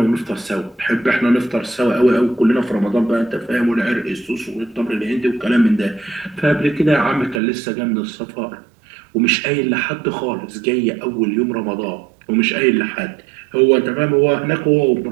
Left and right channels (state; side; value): drops out; left; at 7.4 s